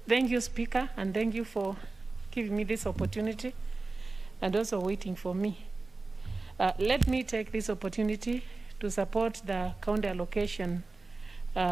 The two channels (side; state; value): left; quieter; 3.5 dB